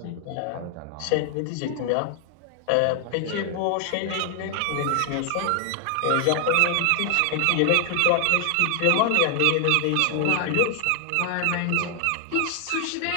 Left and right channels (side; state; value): both; different; correlation 0.00